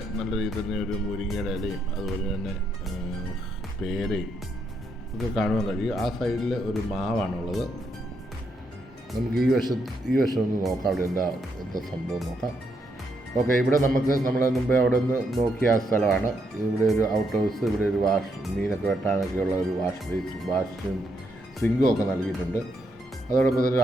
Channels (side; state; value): both; normal; correlation 0.78